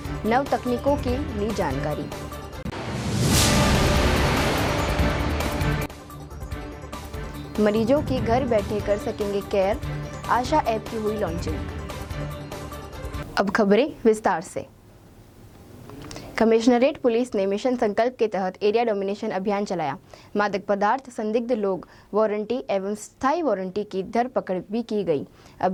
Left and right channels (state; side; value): identical; both; correlation 1.00